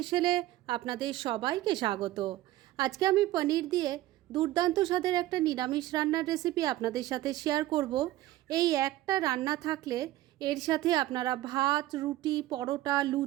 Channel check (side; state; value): left; quieter; 15.6 dB